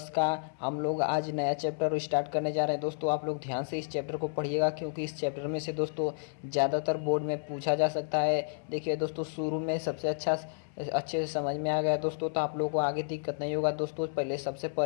का हम लोग आज नया चैप्टर स्टार्ट करने जा रहे हैं। दोस्तों आप लोग ध्यान से इस चैप्टर को पढ़िएगा, क्योंकि इस चैप्टर में से दोस्तों ज़्यादातर बोर्ड में पूछा जा सकता है। देखिए दोस्तों, शुरू में सबसे अच्छे से समझ में आ गया दोस्तों, तो आप लोगों को आगे दिक्कत नहीं होगा। दोस्तों सबसे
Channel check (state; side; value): silent; right; 57 dB below the other